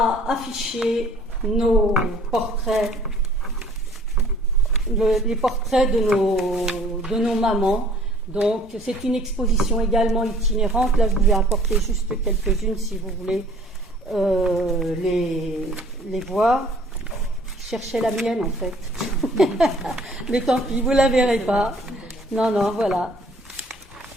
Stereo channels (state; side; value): normal; both; correlation 0.55